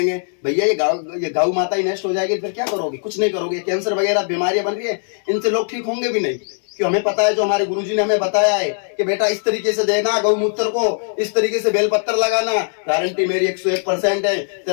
भैया ये गौ माता ही नष्ट हो जाएगी, फिर क्या करोगे, कुछ नहीं करोगे। कैंसर वगैरह बीमारियां बन रही है, इनसे लोग ठीक होंगे भी नहीं। क्यों, हमें पता है, जो हमारे गुरुजी ने हमें बताया है कि बेटा इस तरीके से देना गौमूत्र को, इस तरीके से बेलपत्र लगाना, गारंटी मेरी 101% है।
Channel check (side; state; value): right; silent; 66 dB below the other